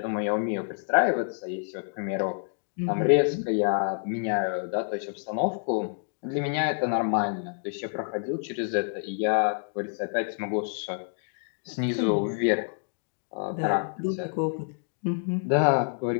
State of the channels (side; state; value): right; silent; digital silence